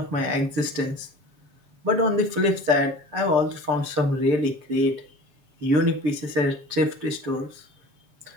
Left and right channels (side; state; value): left; late; 6.8 ms